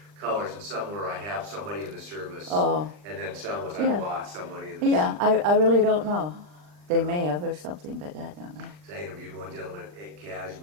colors, and some were I have somebody in the service, and then some was I lost somebody in the service. Yeah, I really don't know. They may have or something, but I don't know. I interviewed one gentleman at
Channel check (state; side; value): late; left; 39 ms